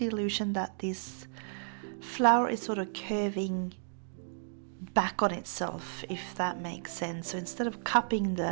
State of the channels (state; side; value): silent; left; digital silence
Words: illusion that this flower is sort of curving back on itself, if that makes sense. So instead of cupping